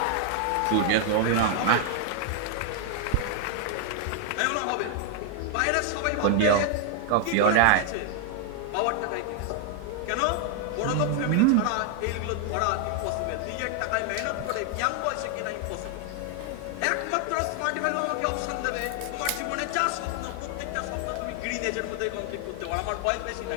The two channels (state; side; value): different; both; correlation 0.00